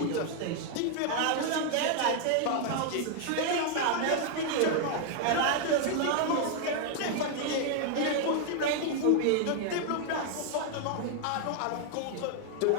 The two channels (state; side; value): different; both; correlation 0.00